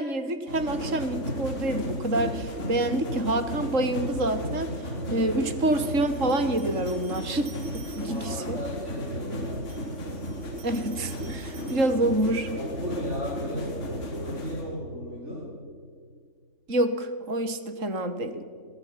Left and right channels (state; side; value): late; left; 3.7 ms